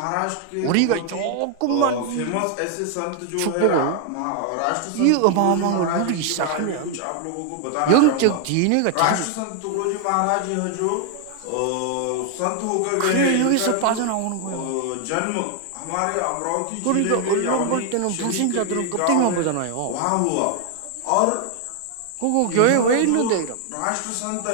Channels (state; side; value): different; both; correlation 0.00